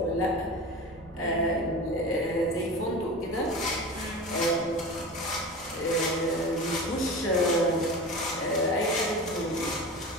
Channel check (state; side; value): normal; both; correlation 0.31